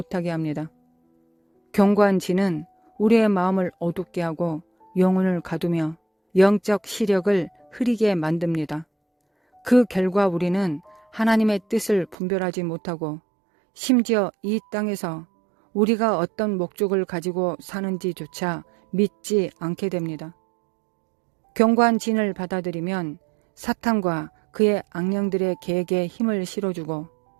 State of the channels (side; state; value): left; drops out; at 12.2 s